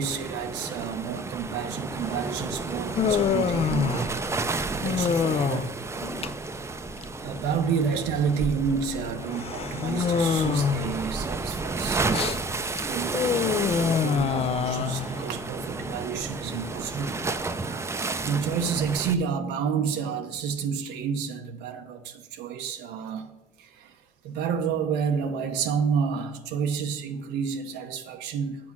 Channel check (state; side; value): normal; both; correlation 0.45